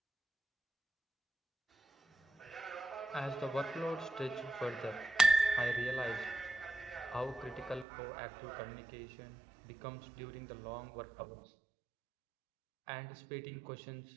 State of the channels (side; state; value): left; drops out; at 7.9 s